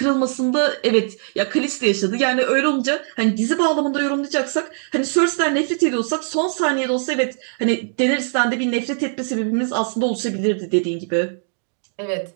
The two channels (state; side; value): silent; left; digital silence